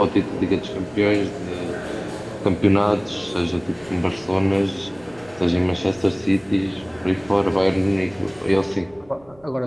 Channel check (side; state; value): right; noise; rumble, 27 dB below the sound